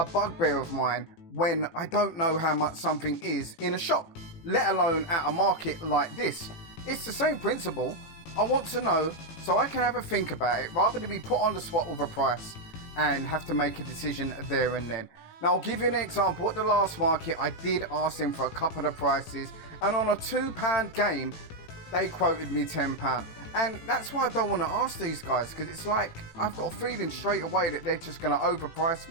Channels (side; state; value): right; late; 18 ms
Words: bugbear of mine when I don't know how much something is in a shop, let alone at a market like this. It's the same principle. I want to know so I can have a think about it rather than be put on the spot with a price and have to make a decision there and then. Now, I'll give you an example. At the last market, I did ask them for a couple of prices, and on a £2 game, they quoted me £10. And that's why I don't want to ask these guys, because it's like I've got a feeling straight away that they're just going to overprice